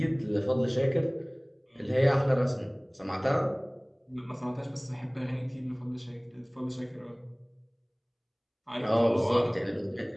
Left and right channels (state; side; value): identical; both; correlation 1.00